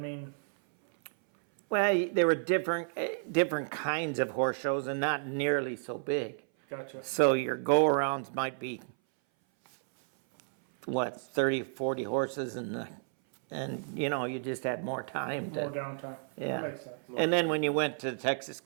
Well, there were different kinds of horse shows, and not nearly so big. gotcha. So your go-arounds might be what, 30, 40 horses and you know, you just had more time More to, downtime. Yeah. That makes sense. and then when you went to the Texas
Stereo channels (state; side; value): silent; left; 57 dB below the other